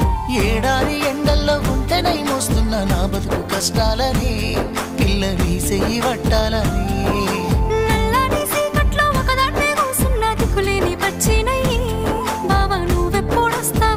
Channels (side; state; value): both; identical; correlation 1.00